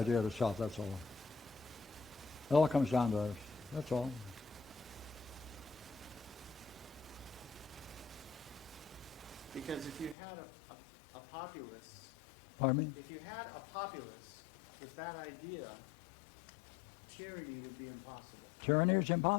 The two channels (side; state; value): right; drops out; at 10.2 s